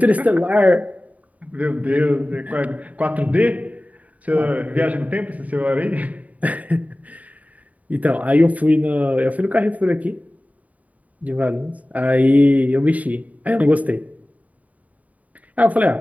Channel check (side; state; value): left; late; 0.071 ms